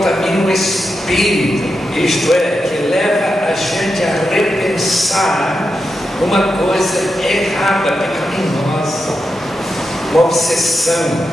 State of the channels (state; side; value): normal; both; correlation 0.87